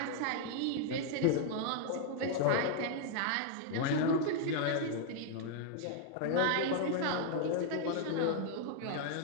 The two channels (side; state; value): both; different; correlation 0.00